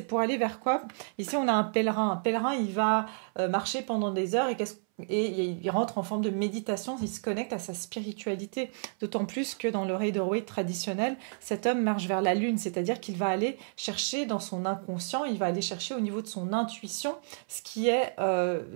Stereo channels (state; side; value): silent; left; 58 dB below the other